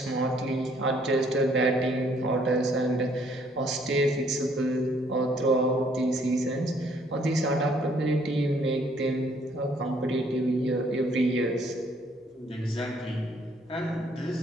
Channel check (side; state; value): both; normal; correlation 0.64